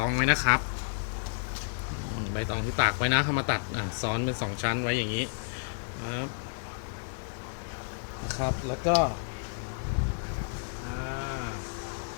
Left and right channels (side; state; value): right; silent; digital silence